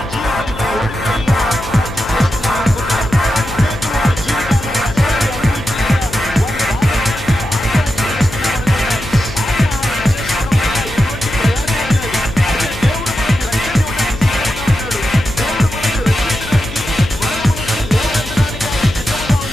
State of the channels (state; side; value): noise; left; hum, 12 dB below the sound